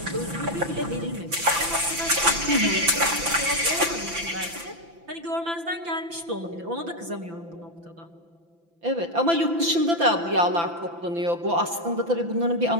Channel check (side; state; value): left; late; 5.9 ms